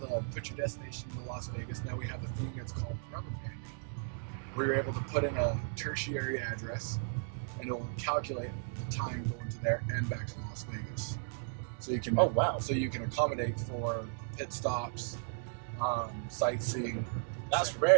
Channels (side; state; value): left; silent; digital silence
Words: put your destination into Las Vegas. Now we have the thing that's called rubber banding, where you're able to put in a tertiary address, and it will calculate the time going to there and back to Las Vegas. So you can. Oh wow. So you can accommodate for pit stops, sightseeing. That's